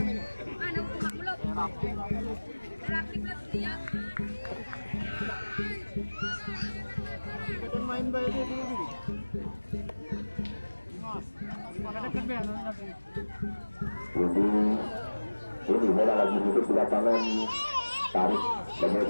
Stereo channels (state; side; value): inverted; both; correlation -1.00